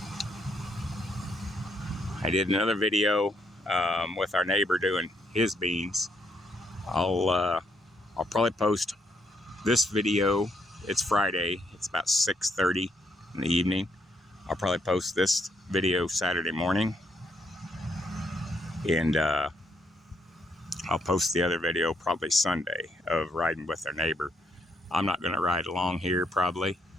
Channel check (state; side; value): normal; both; correlation 0.74